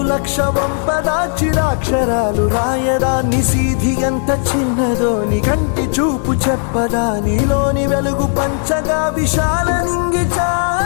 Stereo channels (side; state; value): right; silent; 55 dB below the other